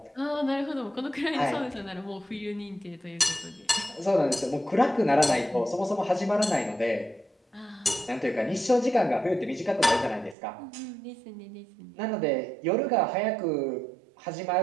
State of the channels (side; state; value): left; drops out; at 10.4 s